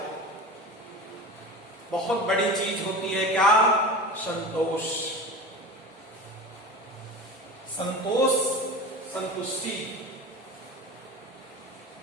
बहुत बड़ी चीज होती है क्या? संतोष, संतोष, संतुष्टि।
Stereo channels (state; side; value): normal; both; correlation 0.31